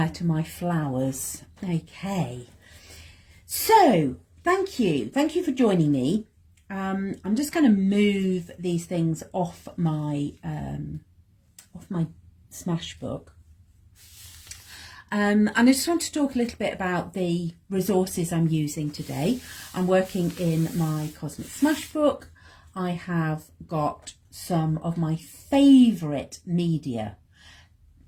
to my flowers. Okay, so thank you for joining me. I'm just going to move these things off my Smashbook. And I just want to talk a little bit about the resources I'm using today. I'm working in my Cosmic Smashbook. I have got some of my favourite media,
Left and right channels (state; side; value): identical; both; correlation 1.00